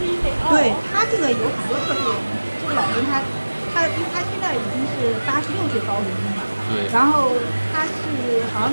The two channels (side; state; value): both; inverted; correlation -1.00